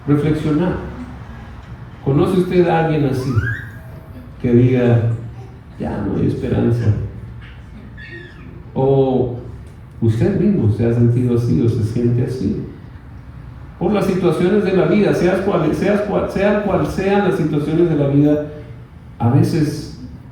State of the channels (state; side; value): identical; both; correlation 1.00